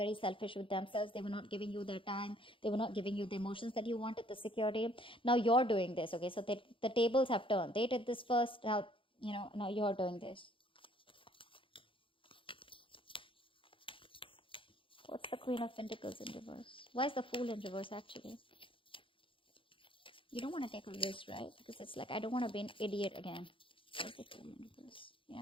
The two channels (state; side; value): late; right; 0.25 ms